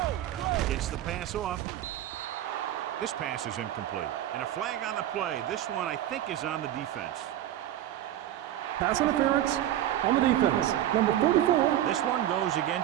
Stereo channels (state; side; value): quieter; left; 12.4 dB